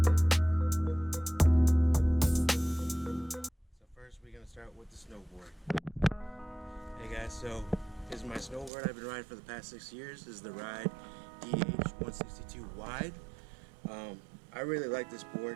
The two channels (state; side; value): drops out; left; at 8.7 s